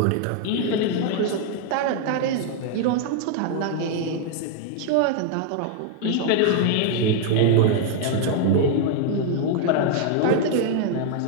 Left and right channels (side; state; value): both; different; correlation 0.00